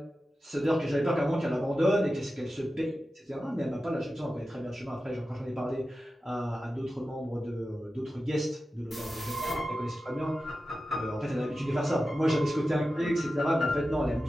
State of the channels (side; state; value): both; normal; correlation 0.93